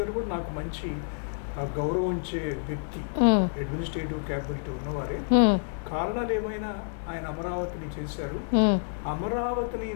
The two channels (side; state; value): right; silent; 59 dB below the other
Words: గారు కూడా నాకు మంచి గౌరవించే వ్యక్తి, అడ్మినిస్ట్రేటివ్ క్యాపబిలిటీ ఉన్నవారే. కారణాలు ఏమైనా ఆయన అమరావతిని చేశారు. అమరావతిని